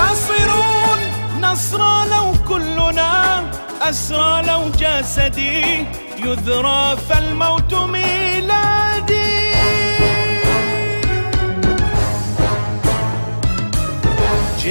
نصرى لو كلنا أسرى، لو جسدي يذرى فالموت ميلادي.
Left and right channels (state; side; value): inverted; both; correlation -1.00